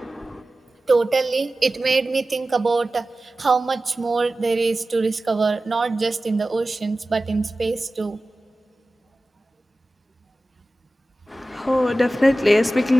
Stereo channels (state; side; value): normal; both; correlation 0.96